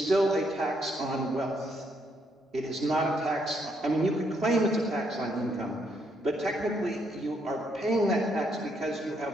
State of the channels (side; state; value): both; normal; correlation 0.74